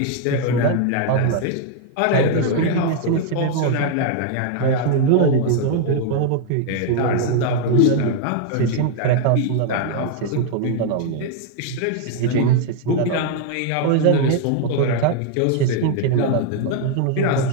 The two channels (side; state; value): both; different; correlation 0.00